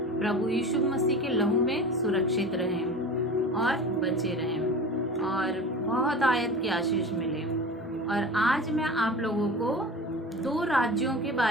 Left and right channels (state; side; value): normal; both; correlation 0.34